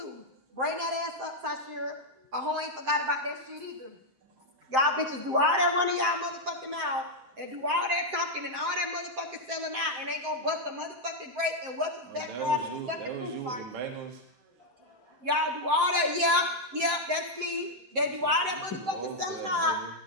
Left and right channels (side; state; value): left; late; 7.7 ms